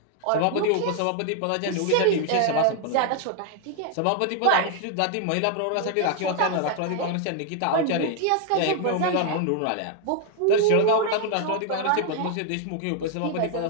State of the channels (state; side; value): different; both; correlation 0.00